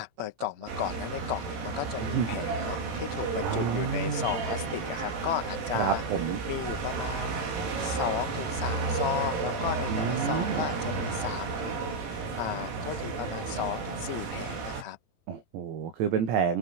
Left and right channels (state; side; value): late; left; 18 ms